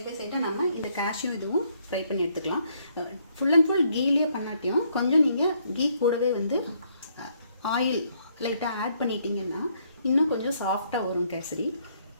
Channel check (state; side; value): inverted; both; correlation -0.70